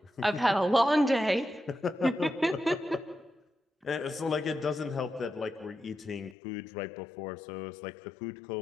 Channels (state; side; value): drops out; right; at 6.4 s